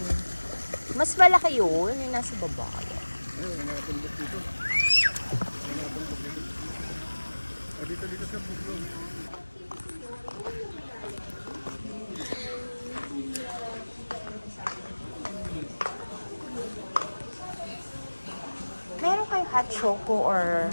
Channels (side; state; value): both; inverted; correlation -1.00